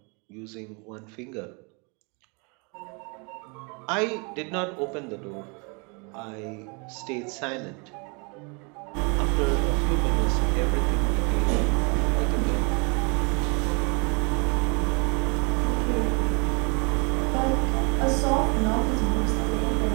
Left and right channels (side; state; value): left; quieter; 32.3 dB